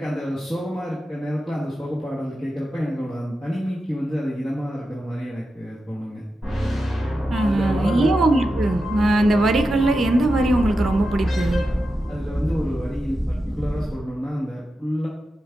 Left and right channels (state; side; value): normal; both; correlation 0.90